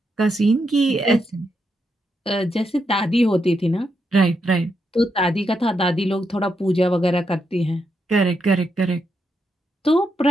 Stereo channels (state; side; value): normal; both; correlation 0.82